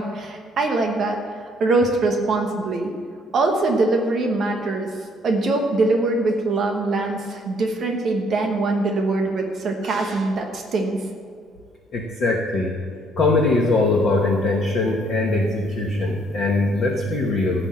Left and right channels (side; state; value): both; normal; correlation 0.65